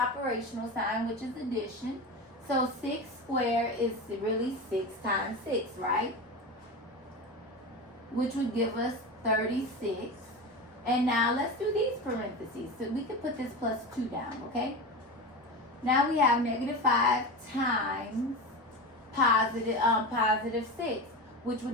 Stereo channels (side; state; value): both; normal; correlation 0.24